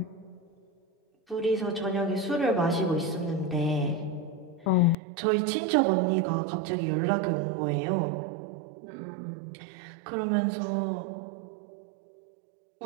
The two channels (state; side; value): drops out; left; at 5.0 s